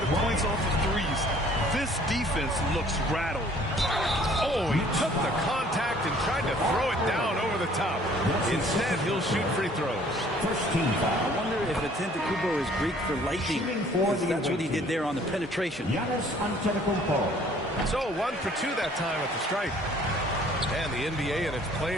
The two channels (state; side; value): normal; both; correlation 0.56